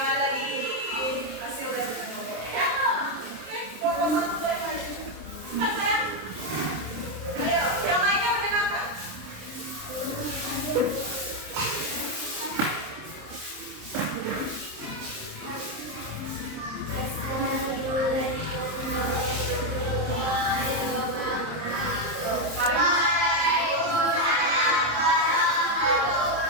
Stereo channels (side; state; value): left; late; 27 ms